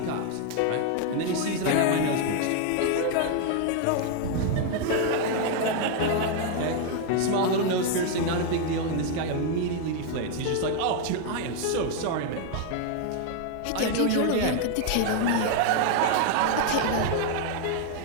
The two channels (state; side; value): different; both; correlation 0.00